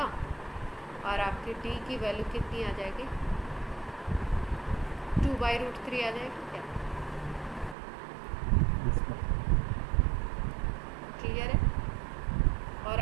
और आपकी d की वैल्यू कितनी आ जाएगी, 2/√3 आ जाएगी क्या? क्लियर है? और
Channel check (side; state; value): left; drops out; at 7.8 s